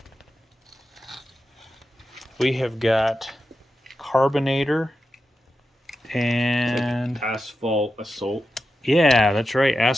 We have got Carbonator and Asphalt Assault. yeah, that's right,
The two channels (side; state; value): both; normal; correlation 0.90